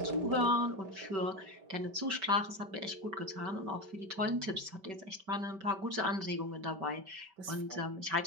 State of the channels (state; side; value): late; left; 5.2 ms